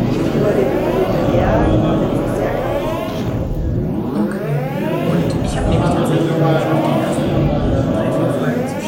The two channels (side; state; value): both; identical; correlation 1.00